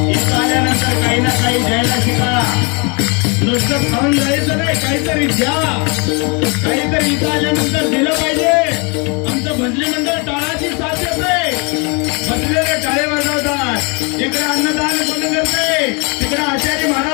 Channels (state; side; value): quieter; right; 32.0 dB